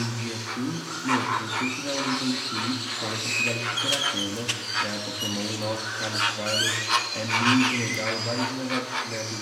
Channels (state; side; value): identical; both; correlation 1.00